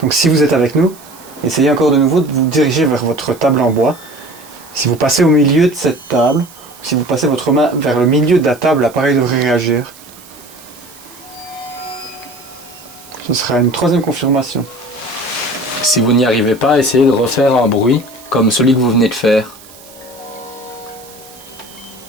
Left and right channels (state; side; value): noise; right; hiss, 22 dB below the sound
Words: Donc si vous êtes avec nous, essayez encore de nouveau de vous diriger vers votre table en bois. Si vous passez au milieu de cette table, si vous passez votre main vers le milieu de la table, l'appareil devrait réagir. Ce sera une troisième confirmation. Si vous n'y arrivez pas, essayez de refaire un bruit comme celui que vous venez de faire.